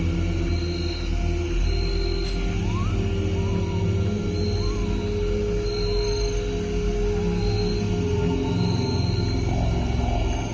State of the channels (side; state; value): both; identical; correlation 1.00